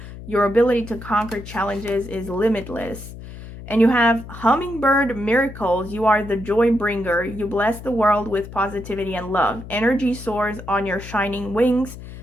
Your ability to conquer challenges is limitless. And you have hummingbird miracles. You are the joy bringer. You bless the world with positivity and love. Energy soars on your shining wings.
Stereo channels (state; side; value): noise; left; hum, 13 dB below the sound